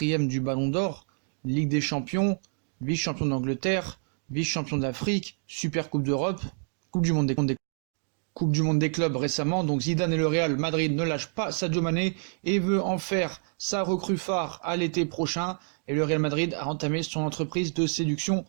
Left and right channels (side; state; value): left; silent; 59 dB below the other